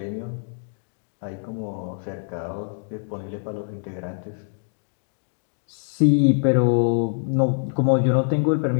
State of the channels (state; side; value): silent; right; 58 dB below the other